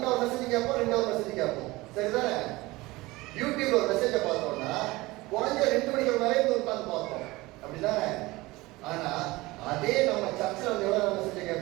hour மெசேஜ் கேட்போம், 2 hour மெசேஜ் கேட்போம், சரிதானே? யூடியூப்ல ஒரு மெசேஜை பார்த்தோம்னா குறைஞ்ச 2 மணிக்கு மேலே உட்காந்து பார்ப்போம், அப்படிதானே? ஆனா அதே நம்ம சர்ச்சில் வந்து எவ்வளவு மெசேஜ்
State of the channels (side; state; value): left; quieter; 20.8 dB